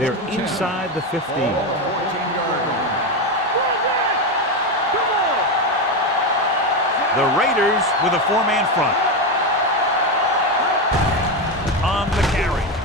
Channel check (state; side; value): normal; both; correlation 0.13